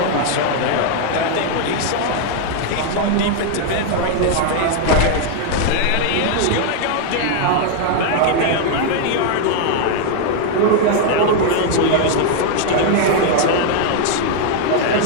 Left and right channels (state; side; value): different; both; correlation 0.00